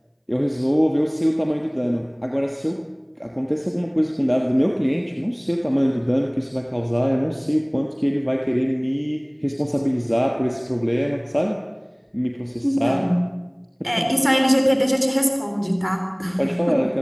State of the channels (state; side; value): identical; both; correlation 1.00